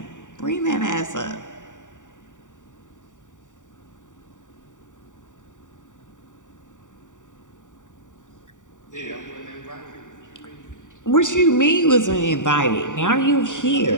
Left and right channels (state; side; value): late; right; 0.86 ms